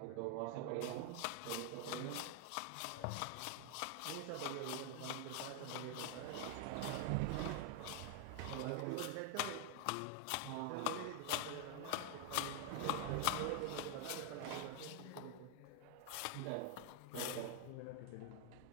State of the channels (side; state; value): both; different; correlation 0.00